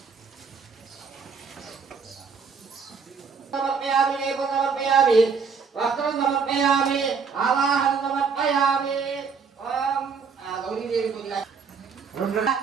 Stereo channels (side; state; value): left; quieter; 5.6 dB